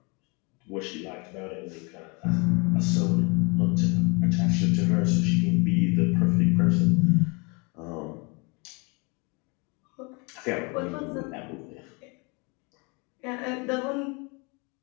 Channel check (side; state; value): right; quieter; 30.4 dB